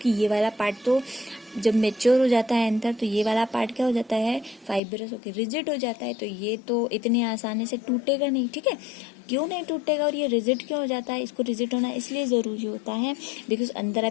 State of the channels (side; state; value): right; drops out; at 4.8 s